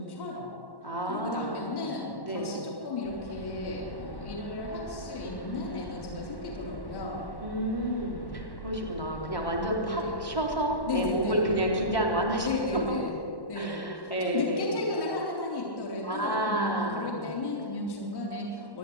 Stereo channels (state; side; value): late; right; 1.1 ms